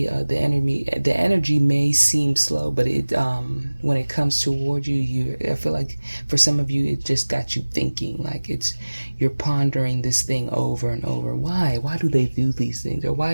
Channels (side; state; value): both; inverted; correlation -1.00